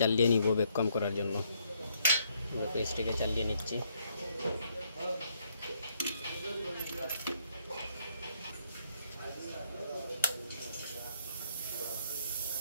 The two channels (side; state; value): both; inverted; correlation -0.71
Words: চালিয়ে নিব ভ্যাকুয়াম করার জন্য। আমরা ফ্রিজটিকে চালিয়ে নিচ্ছি।